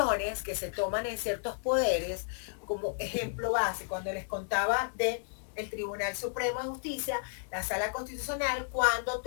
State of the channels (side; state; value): right; silent; 56 dB below the other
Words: que se toman en ciertos poderes, como ejemplo base, cuando les contaba de el Tribunal Supremo de Justicia, la Sala Constitucional, cuando